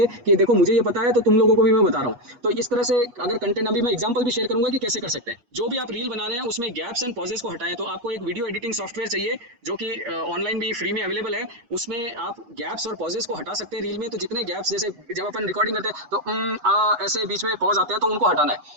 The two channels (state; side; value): late; left; 8.4 ms